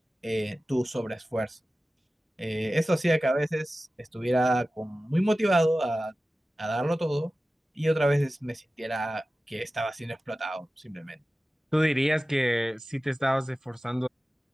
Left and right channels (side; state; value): both; normal; correlation 0.96